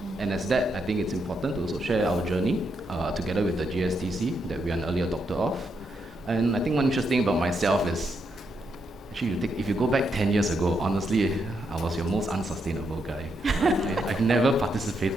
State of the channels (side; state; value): both; normal; correlation 0.80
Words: And as that, I think it's important to also share our journey together with the GSTC that we are an early adopter of. And I think one interesting about myself is, actually, if you go back 10 years ago, honestly, I was your most unsustainable guy. I've never